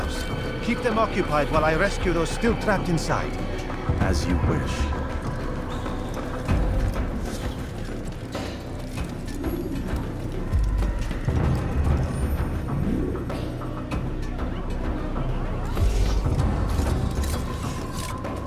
Keep them occupied while I rescue those still trapped inside. As you wish.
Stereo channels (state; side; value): identical; both; correlation 1.00